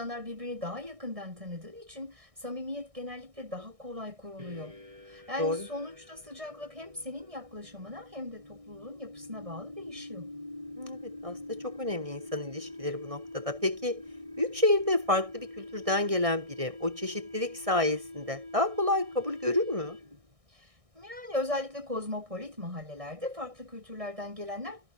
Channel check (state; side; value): late; left; 1.6 ms